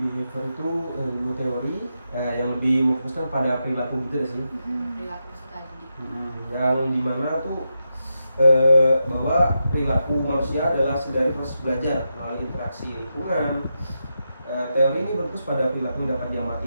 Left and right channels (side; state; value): both; inverted; correlation -0.87